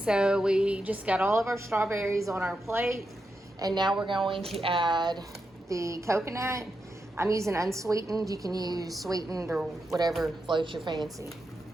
we just got all of our strawberries on our plate, and now we're going to add the coconut. I'm using unsweetened. You can use sweetened or whatever floats your fancy.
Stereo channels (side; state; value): both; normal; correlation 0.86